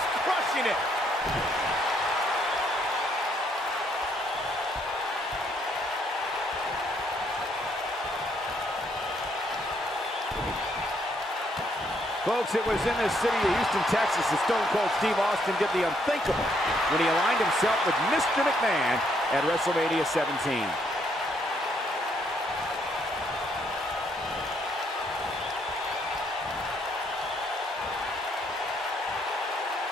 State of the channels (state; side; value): normal; both; correlation 0.71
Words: crushing it. Folks, it was in this city of Houston, Texas that Stone Cold Steve Austin did the unthinkable when he aligned himself with Mr. McMahon at WrestleMania 17.